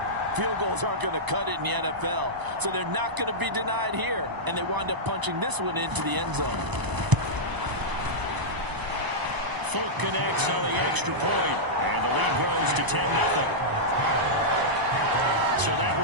field goals aren't going to cut it in the NFL, so they're not going to be denied here, and they wind up punching this one into the end zone. Fulk connects on the extra point, and the lead grows to 10-0. So that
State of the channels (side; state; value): left; late; 1.0 ms